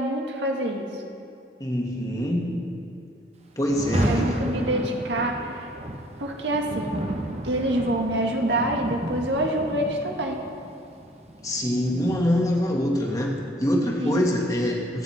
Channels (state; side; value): normal; both; correlation 0.58